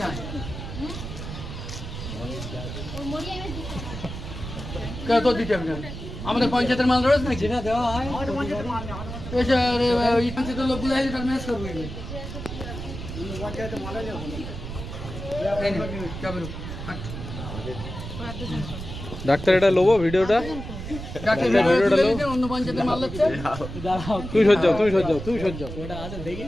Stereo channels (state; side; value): noise; right; rumble, 8 dB below the sound